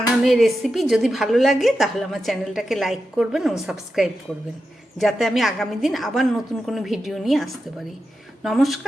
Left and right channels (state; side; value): normal; both; correlation 0.89